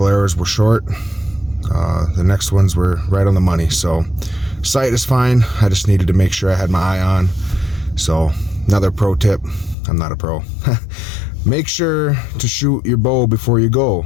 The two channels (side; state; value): right; drops out; at 9.8 s